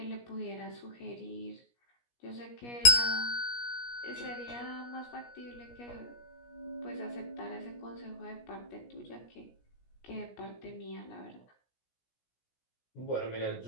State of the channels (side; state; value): right; late; 17 ms